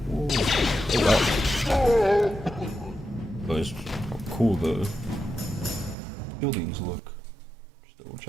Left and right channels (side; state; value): left; drops out; at 6.0 s